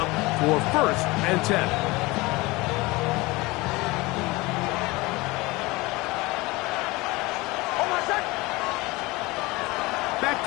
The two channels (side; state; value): right; quieter; 22.2 dB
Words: for 1st and 10. Back